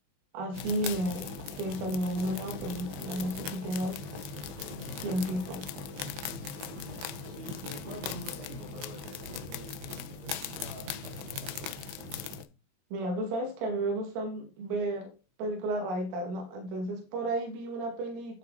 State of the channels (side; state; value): left; late; 21 ms